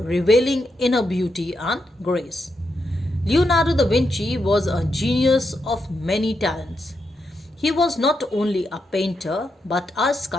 revealing inner beauty and grace. Leonardo da Vinci was a genius of many talents. He was not only a painter but a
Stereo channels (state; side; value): normal; both; correlation 0.84